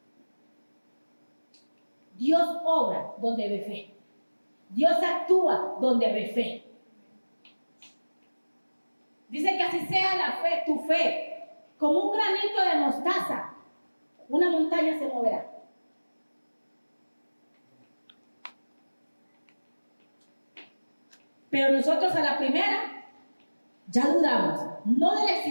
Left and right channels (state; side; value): inverted; both; correlation -1.00